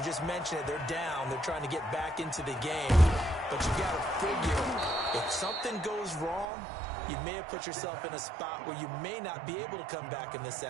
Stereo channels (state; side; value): drops out; left; at 6.5 s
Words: just mentioned it. They're down. They're trying to get back into the game. But you got to figure, if something goes wrong, you may have put yourself in a spot where you may not be able to come back in the